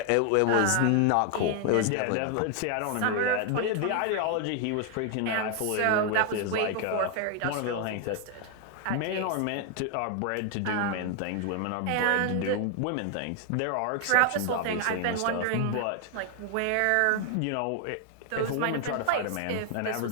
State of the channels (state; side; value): different; both; correlation 0.00